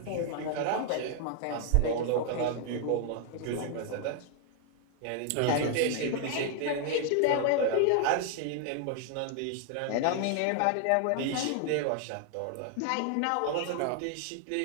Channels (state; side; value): different; both; correlation 0.00